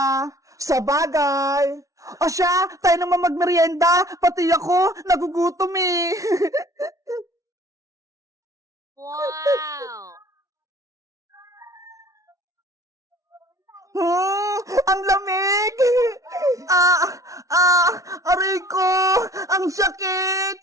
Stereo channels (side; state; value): left; late; 0.16 ms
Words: Sa bagay. O siya, tayo naman magmerienda. Pati ako, nagugutom eh. Wow! Ang lamig! Aray ko! Ang sakit!